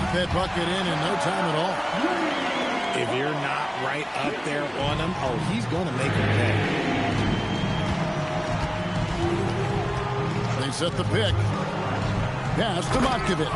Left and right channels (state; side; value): identical; both; correlation 1.00